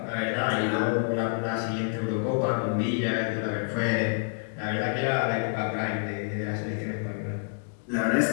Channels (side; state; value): right; silent; 59 dB below the other